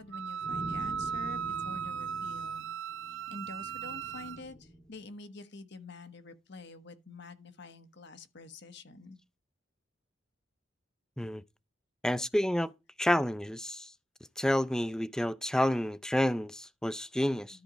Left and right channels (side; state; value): both; normal; correlation 0.89